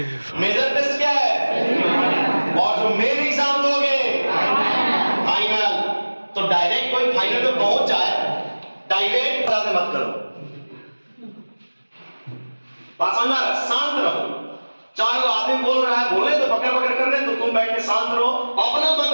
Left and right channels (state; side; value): inverted; both; correlation -1.00